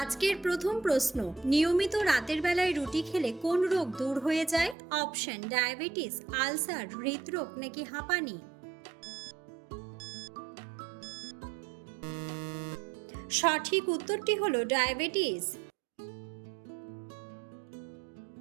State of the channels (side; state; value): left; drops out; at 4.8 s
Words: আজকের প্রথম প্রশ্ন, নিয়মিত রাতের বেলায় রুটি খেলে কোন রোগ দূর হয়ে যায়? অপশন: ডায়াবেটিস, আলসার, হৃদরোগ নাকি হাঁপানি? সঠিক উত্তরটি হলো ডায়াবেটিস।